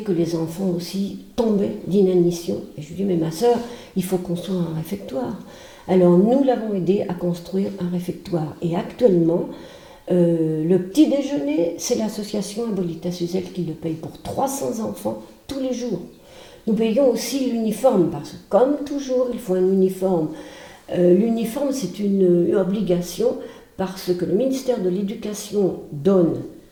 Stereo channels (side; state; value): both; identical; correlation 1.00